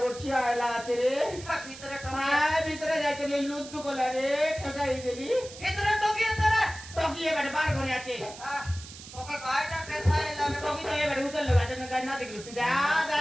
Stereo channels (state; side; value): noise; right; hiss, 15 dB below the sound